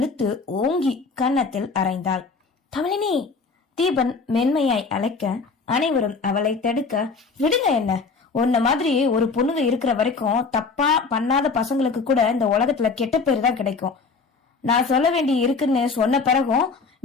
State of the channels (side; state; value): right; quieter; 4.5 dB